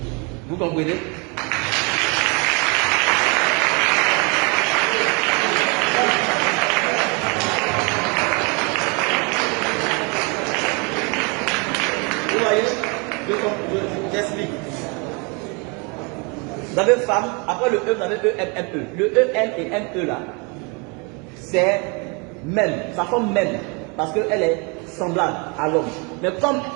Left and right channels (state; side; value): quieter; left; 31.8 dB